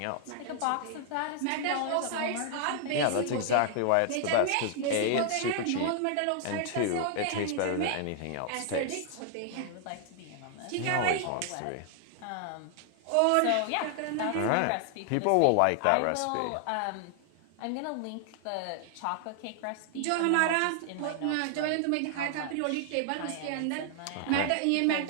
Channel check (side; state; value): both; different; correlation 0.00